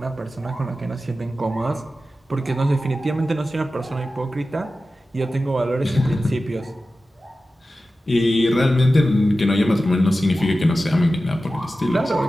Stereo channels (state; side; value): normal; both; correlation 0.94